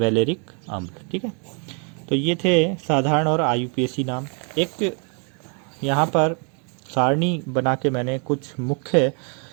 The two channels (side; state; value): left; quieter; 38.5 dB